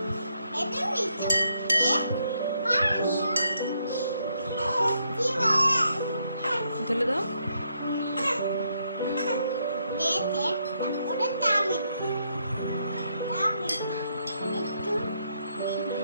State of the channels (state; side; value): inverted; both; correlation -0.76